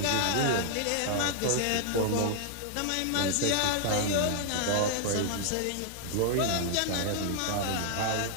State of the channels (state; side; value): different; both; correlation 0.00